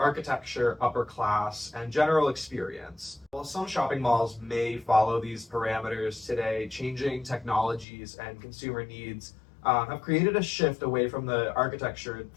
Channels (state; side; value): drops out; right; at 7.9 s